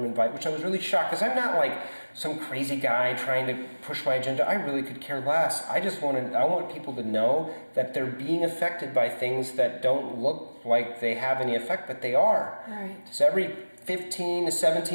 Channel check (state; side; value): inverted; both; correlation -1.00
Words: invite, which I was really shocked, because I'm not like some crazy guy trying to push my agenda. I really could care less. I want people to know that they're being affected by things that don't look like they have any effect, but they are. Right. So every 15 to